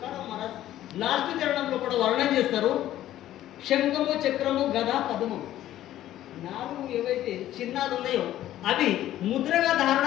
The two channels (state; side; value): quieter; right; 13.2 dB